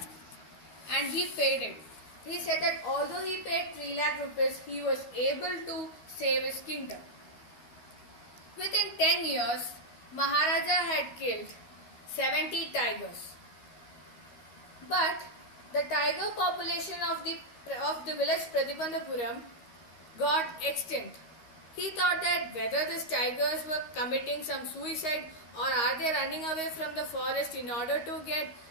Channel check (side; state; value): right; late; 13 ms